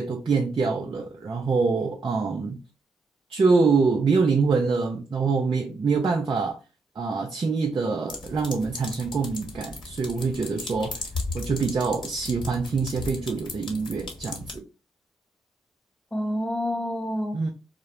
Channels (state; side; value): quieter; left; 3.7 dB